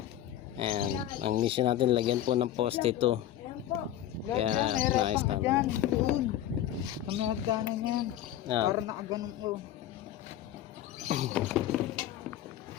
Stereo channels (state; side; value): quieter; right; 12.3 dB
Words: And ang mission natin, lagyan po ng poste ito. Kaya nice naman. Kami hagkanan yan. Para nakaganong ko.